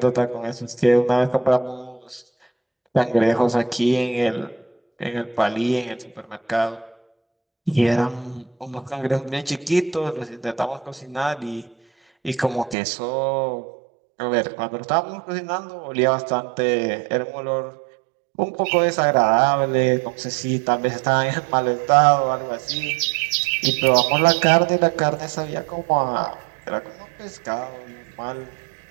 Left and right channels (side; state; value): left; drops out; at 12.8 s